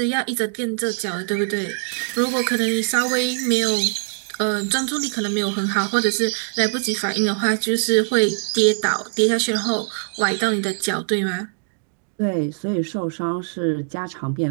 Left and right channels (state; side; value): silent; left; digital silence